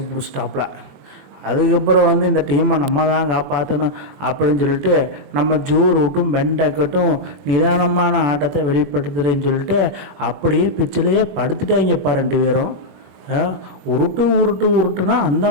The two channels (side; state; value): left; late; 21 ms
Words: பிடிச்சிட்டாப்புல. அதுக்கப்புறம் இந்த டீமை நம்ம தான் காப்பாற்றணும் அப்படின்னு சொல்லிட்டு நம்ம ஜோ ரூட்டும் பென் டக்கட்டும் நிதானமான ஆட்டத்தை வெளிப்படுத்துகிறேன்னு சொல்லிட்டு அப்படியே பிச்சிலேயே படுத்துட்டாங்கப்பா ரெண்டு பேரும். உருட்டுனா